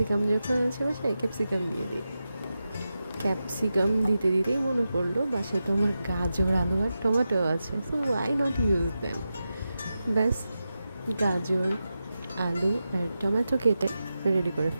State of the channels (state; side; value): inverted; both; correlation -0.91